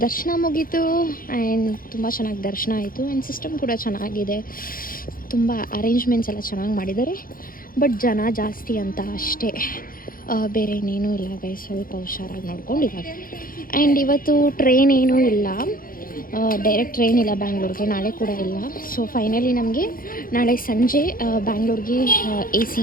ದರ್ಶನ ಮುಗೀತು. ಆ್ಯಂಡ್ ತುಂಬ ಚೆನ್ನಾಗಿ ದರ್ಶನ ಆಯಿತು. ಆ್ಯಂಡ್ ಸಿಸ್ಟಮ್ ಕೂಡ ಚೆನ್ನಾಗಿದೆ, ತುಂಬ ಅರೇಂಜ್ಮೆಂಟ್ಸ್ ಎಲ್ಲ ಚೆನ್ನಾಗಿ ಮಾಡಿದ್ದಾರೆ. ಬಟ್ ಜನ ಜಾಸ್ತಿ ಅಂತ ಅಷ್ಟೇ, ಬೇರೆ ಇನ್ನೇನೂ ಇಲ್ಲ ಗೈಸ್. ಸ್ವಲ್ಪ ಹುಷಾರಾಗಿ ನೋಡ್ಕೊಂಡು ಇವಾಗ. ಆ್ಯಂಡ್ ಇವತ್ತು ಟ್ರೈನ್ ಏನೂ ಇಲ್ಲ, ಡೈರೆಕ್ಟ್ ಟ್ರೈನ್ ಇಲ್ಲ ಬ್ಯಾಂಗ್ಳೂರ್ಗೆ, ನಾಳೆ ಕೂಡ ಇಲ್ಲ. ಸೊ ಫೈನಲಿ ನಮಗೆ ನಾಳೆ ಸಂಜೆ ಬ್ಯಾಂಗ್ಳೂರ್ಗೆ AC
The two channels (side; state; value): right; late; 0.41 ms